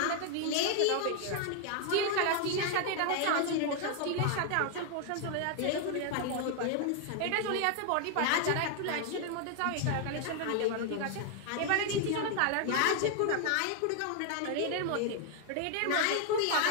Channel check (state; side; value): different; both; correlation 0.00